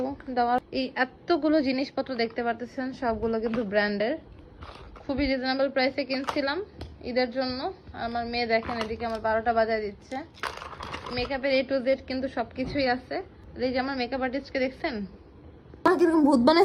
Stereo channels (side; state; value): both; identical; correlation 1.00